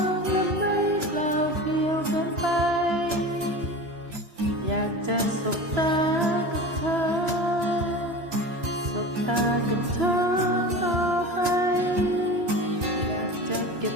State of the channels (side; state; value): left; late; 2.9 ms